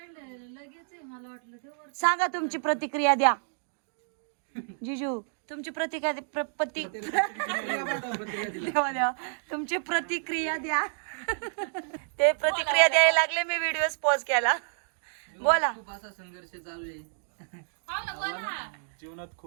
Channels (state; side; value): silent; left; digital silence